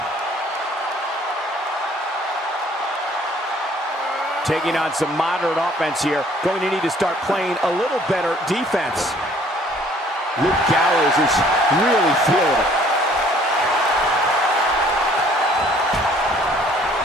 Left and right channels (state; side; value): normal; both; correlation 0.58